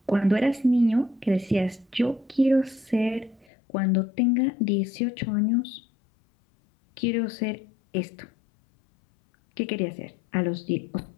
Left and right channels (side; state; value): right; drops out; at 3.5 s